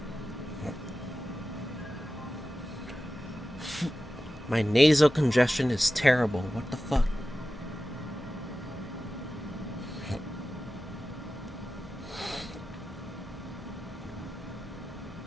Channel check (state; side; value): normal; both; correlation 0.94